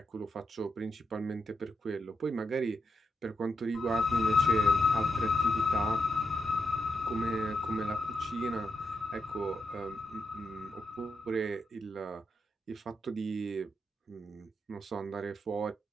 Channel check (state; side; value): normal; both; correlation 0.83